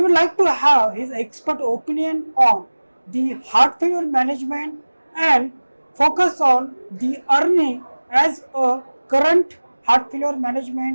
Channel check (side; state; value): both; inverted; correlation -1.00